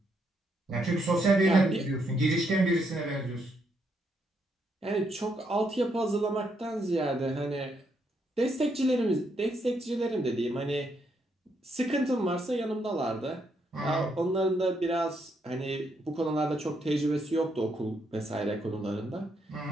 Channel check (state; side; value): normal; both; correlation 0.76